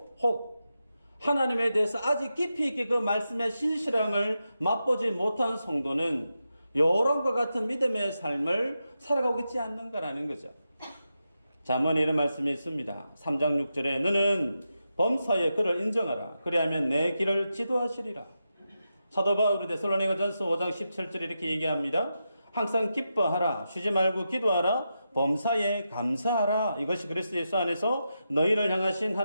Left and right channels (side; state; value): both; inverted; correlation -0.88